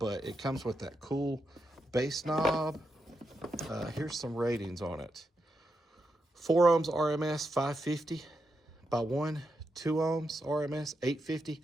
it comes with that cool bass knob. Here's some ratings on it. 4 ohms RMS 550 by 1, 2 ohms RMS 850,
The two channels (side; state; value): both; normal; correlation 0.85